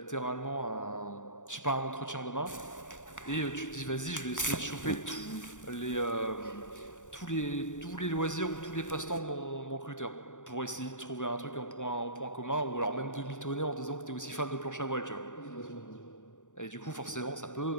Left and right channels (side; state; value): right; late; 0.86 ms